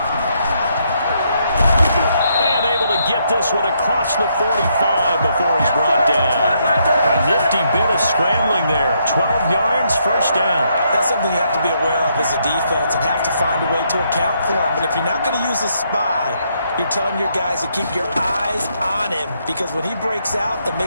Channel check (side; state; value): both; inverted; correlation -0.75